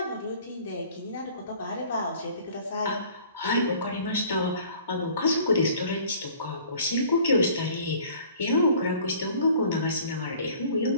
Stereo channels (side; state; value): both; inverted; correlation -0.51